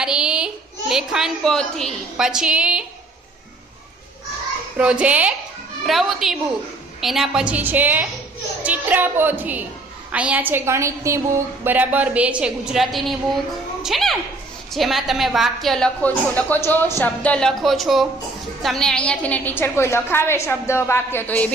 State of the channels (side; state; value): left; quieter; 3.1 dB